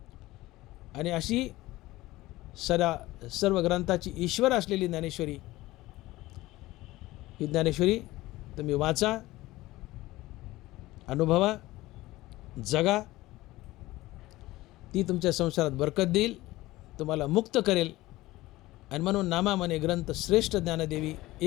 आणि अशी सर्व ग्रंथाची ईश्वर असलेली ज्ञानेश्वरी, ही ज्ञानेश्वरी तुम्ही वाचा, अनुभवा, जगा. ती तुमच्या संसारात बरकत देईल, तुम्हाला मुक्त करेल. आणि म्हणून नामा म्हणे ग्रंथ श्रेष्ठ ज्ञानदेवी,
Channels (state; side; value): quieter; right; 18.0 dB